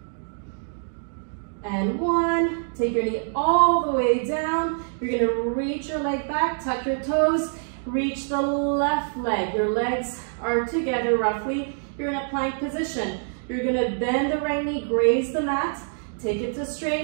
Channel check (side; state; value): left; silent; digital silence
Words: and 1. Take your knee all the way down. You're going to reach your leg back, tuck your toes, reach the left leg. Your legs are together roughly. You're in a plank position. You're going to bend the right knee, graze the mat, take it to